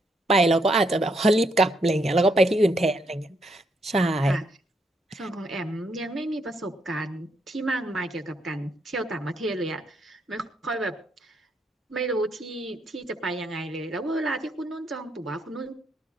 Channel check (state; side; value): normal; both; correlation 0.76